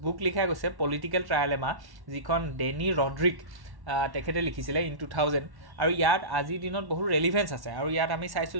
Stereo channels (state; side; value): late; left; 1.1 ms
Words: বুক লিখা গৈছে, পলিটিকেল ট্ৰাইলেমা, যিখন ডেনি ৰড্ৰিক তেখেতে লিখিছিলে ইন 2000, আৰু ইয়াত আজিৰ দিনত বহুত ৰেলিভেঞ্চ আছে। আৰু ইয়াত আমি চাইছোঁ